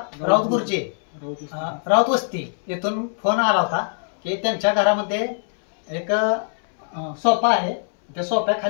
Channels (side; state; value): right; silent; 64 dB below the other